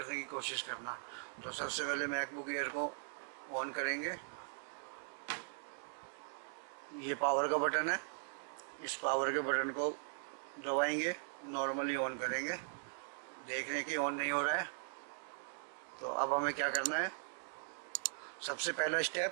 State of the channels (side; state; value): left; silent; digital silence